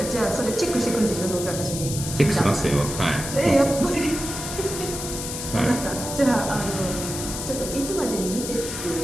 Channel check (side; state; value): left; noise; hiss, 6 dB below the sound